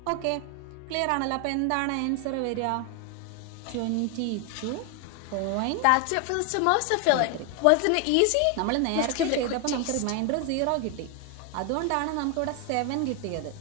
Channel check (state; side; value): different; both; correlation 0.01